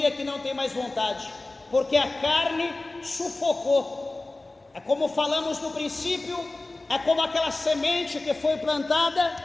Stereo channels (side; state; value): right; quieter; 3.0 dB